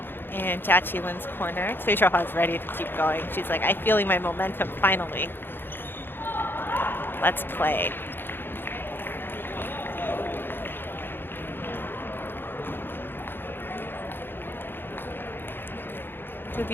in Jiaqi corner. Cui Xiaohua is ready to keep going. She's like, I'm feeling my momentum finally. Let's play. Could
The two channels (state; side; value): late; right; 0.10 ms